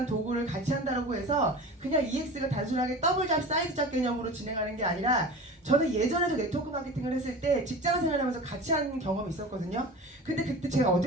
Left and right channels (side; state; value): both; normal; correlation 0.35